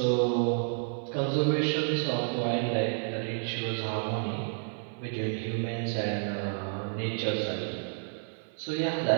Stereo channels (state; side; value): silent; left; 58 dB below the other